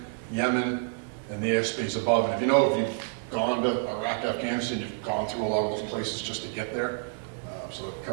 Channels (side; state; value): left; silent; digital silence